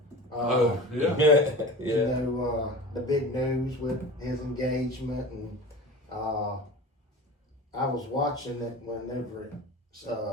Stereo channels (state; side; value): normal; both; correlation 0.35